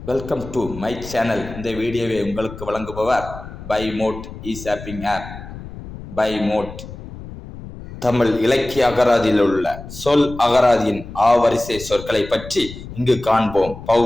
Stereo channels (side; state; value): left; noise; rumble, 13 dB below the sound